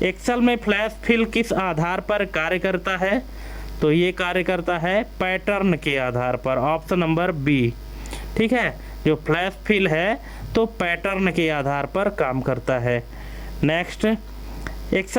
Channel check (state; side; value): identical; both; correlation 1.00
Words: एक्सेल में फ्लैश फिल किस आधार पर कार्य करता है? तो ये कार्य करता है पैटर्न के आधार पर, ऑप्शन नंबर बी, ठीक है। जो फ्लैश फिल है तो पैटर्न के आधार पर काम करता है। नेक्स्ट,